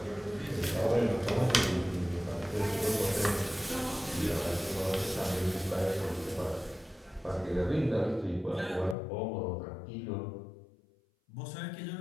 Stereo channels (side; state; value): right; drops out; at 9.0 s